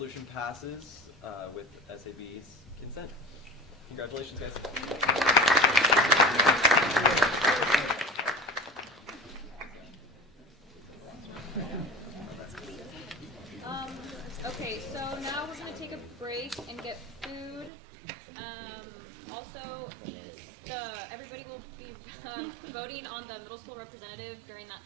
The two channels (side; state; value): left; drops out; at 17.7 s